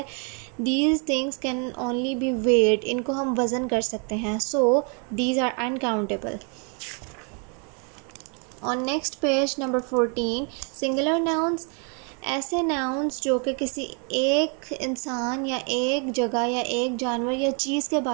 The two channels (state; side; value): quieter; left; 37.8 dB